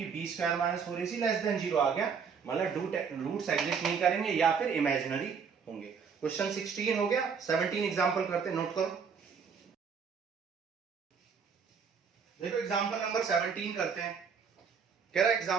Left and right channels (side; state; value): left; quieter; 6.2 dB